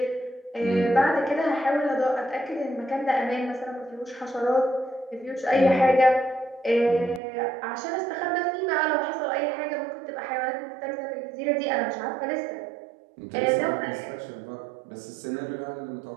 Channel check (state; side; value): drops out; left; at 7.2 s